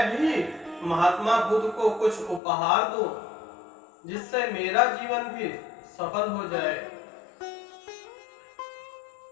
भी महात्मा बुद्ध को कुछ उपहार दूं जिससे मेरा जीवन भी सफल हो जाए,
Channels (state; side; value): drops out; right; at 2.4 s